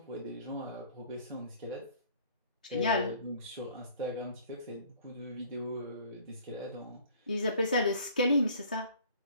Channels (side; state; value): both; inverted; correlation -0.53